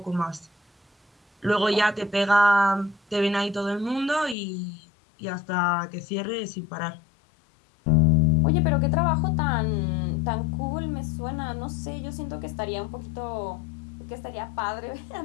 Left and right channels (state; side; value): drops out; right; at 4.4 s